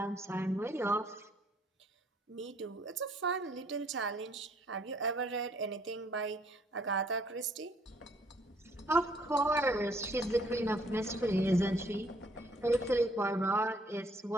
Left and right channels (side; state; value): both; normal; correlation 0.64